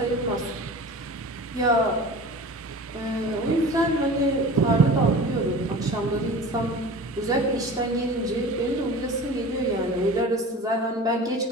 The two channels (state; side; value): normal; both; correlation 0.37